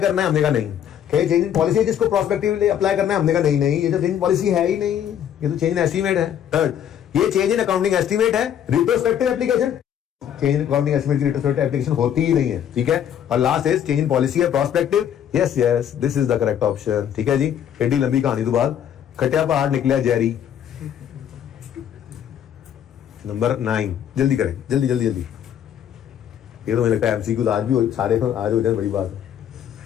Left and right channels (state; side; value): quieter; right; 9.6 dB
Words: करना है? हमने कहा नहीं। क्या ये चेंज इन पॉलिसी है जिसको प्रोस्पेक्टिवली अप्लाई करना है? हमने कहा नहीं, ये तो चेंज इन पॉलिसी है ही नहीं, ये तो चेंज इन एस्टीमेट है। थर्ड, ये चेंज इन अकाउंटिंग एस्टीमेट है, retrospective application, change in accounting estimate की रिट्रोस्पेक्टिव एप्लीकेशन होती ही नहीं है, ठीक है। और last is change in policy है prospective. Yes this is the correct option, ठीक है जी। एडी लंबी कहानी तो बाद खटिया पहाड़ निकला जेरी। नंबर 9, जल्दी करें, जल्दी। ये तो मुझे लगता है एमसीक्यू आज भी सारे आज हो जाए, बड़ी बात है।